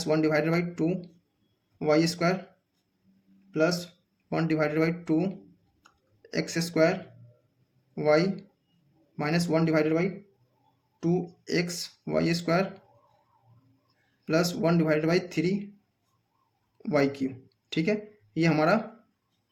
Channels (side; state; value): both; identical; correlation 1.00